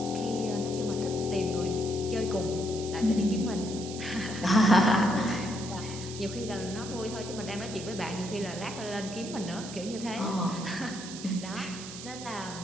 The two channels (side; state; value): right; noise; hiss, 11 dB below the sound